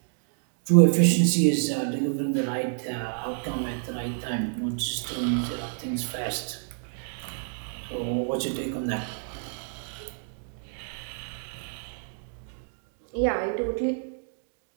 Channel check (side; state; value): left; silent; digital silence